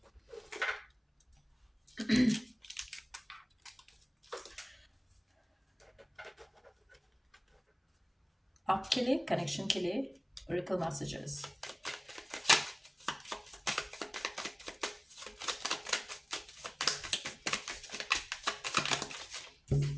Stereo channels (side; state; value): both; identical; correlation 1.00